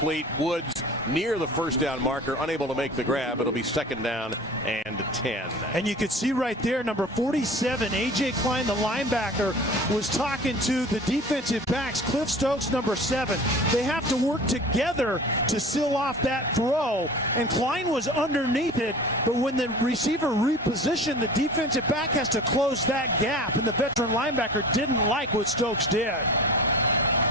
Woods near the first down marker, unable to make the grab. It'll be second down and 10. And you could see right there, number 47, A.J. Klein, the linebacker, was talking to the defensive backs, Cliff Stokes, number 7. They have to work together to seal off that throw, and Klein was underneath it, but when the receiver repositioned, the defensive back has to close that gap, and the veteran linebacker didn't like what Stokes did.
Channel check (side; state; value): both; normal; correlation 0.39